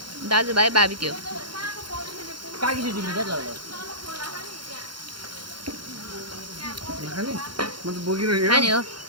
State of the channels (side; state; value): left; late; 0.72 ms